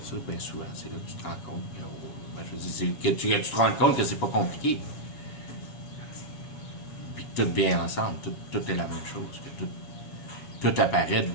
ça, bien souvent, c'est là que tu te rends compte que, je veux dire, que tu te rends compte que c'est pas compliqué. Puis que tout vient ensemble, tout est la même chose, que tout apparaît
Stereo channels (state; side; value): late; right; 7.2 ms